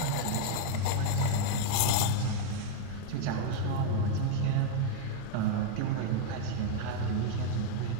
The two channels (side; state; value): both; different; correlation 0.00